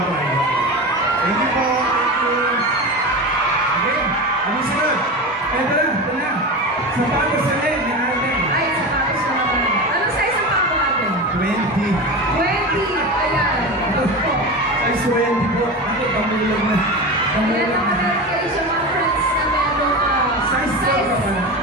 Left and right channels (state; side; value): normal; both; correlation 0.25